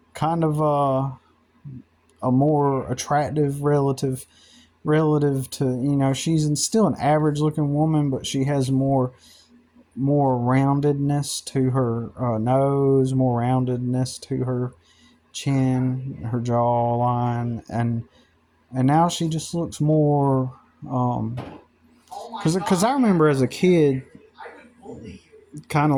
kind of a more attractive relative to, she's still an average looking woman, but she has more roundedness to her nose, more roundedness to her chin, her jawline, and now she just looks more. Because I remember as a kid, kind of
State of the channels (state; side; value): identical; both; correlation 1.00